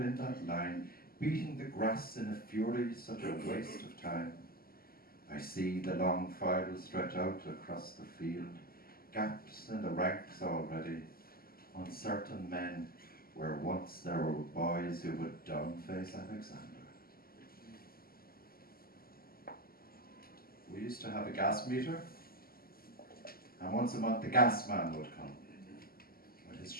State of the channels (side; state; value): right; late; 0.43 ms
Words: that line, beating the grass in a fury, such a waste of time. I see the long file stretch out across the field, gaps in the ranks already, uncertain men where once there were boys who would downface Alexander. We used to have a gas meter, and once a month the gas man would come with his